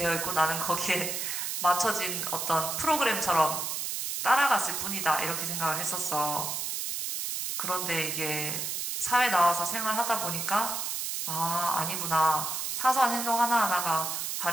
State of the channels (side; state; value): right; noise; hiss, 3 dB below the sound